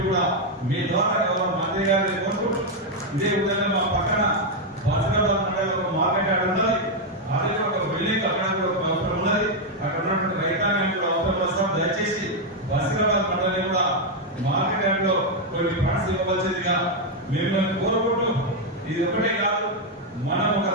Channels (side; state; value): both; normal; correlation 0.01